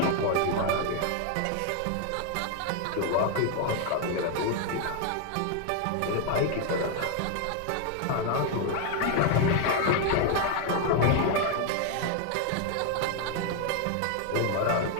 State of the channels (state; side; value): different; both; correlation 0.01